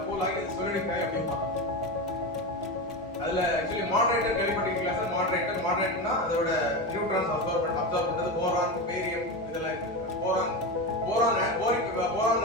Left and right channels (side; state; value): both; normal; correlation 0.19